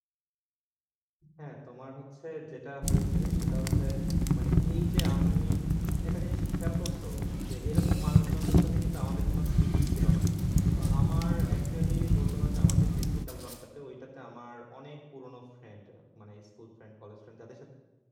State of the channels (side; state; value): both; identical; correlation 1.00